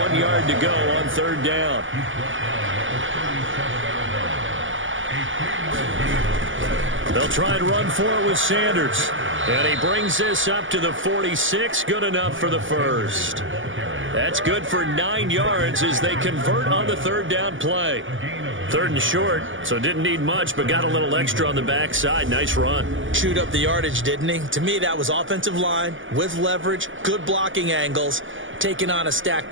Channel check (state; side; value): late; left; 0.57 ms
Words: yard to go on 3rd down. They'll try and run for it with Sanders. And he brings this up to the 46. Good enough for the first. That's good for 9 yards as they convert on the 3rd down play. 3rd and short, so didn't need much, but got a little extra on the backside. Nice run. Chewed up the yardage, didn't he? To me, that was offensive line with leverage, good blocking angles, taking on a stacked